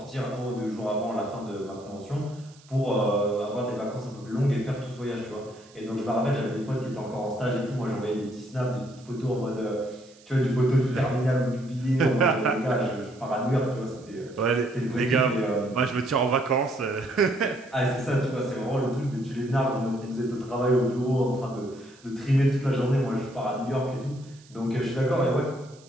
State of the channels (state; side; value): noise; right; hiss, 26 dB below the sound